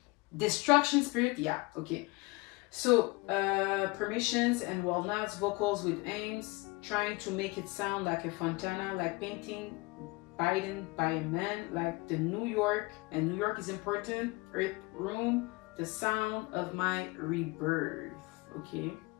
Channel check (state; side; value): quieter; right; 24.8 dB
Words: Destruction spirit, yeah, okay. So, permissions and walnuts, vocals with aims, trying to make it sound like a fontana, like painting bitten by a man, like the New York, and New York is important, earth room, the sound of my rebirth. Okay,